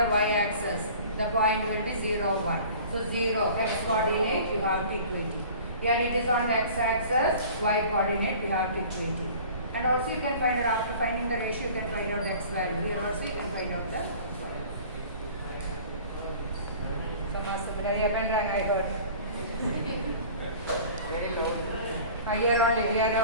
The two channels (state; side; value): inverted; both; correlation -0.45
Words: y-axis, the point will be 0, 1. So 0, x coordinate, you have to equate it. Here it is on the x-axis, y coordinate, you have to equate it. And also you can find out, after finding the ratio, you can find out the x value. Here also you can find out the I heard. Here